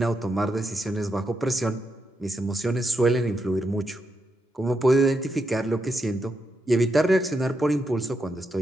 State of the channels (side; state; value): both; normal; correlation 0.83